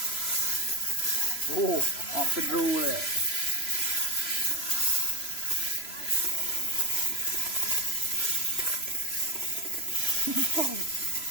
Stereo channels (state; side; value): late; right; 3.0 ms